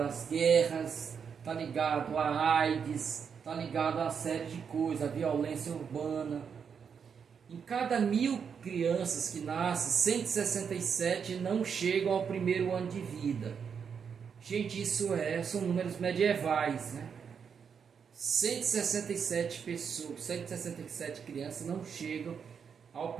guerras, está ligado à AIDS, está ligado a uma série de coisas, à violência urbana. Em cada 1.000 crianças que nascem, 167 não chegam ao primeiro ano de vida. Gente, são números medievais, né? 167 pessoas, 167 crianças não chegam ao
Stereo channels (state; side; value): quieter; left; 6.8 dB